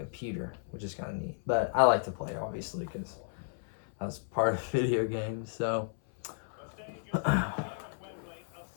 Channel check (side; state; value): right; silent; 55 dB below the other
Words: which is kind of neat. But I like to play, obviously, because that's part of video games. So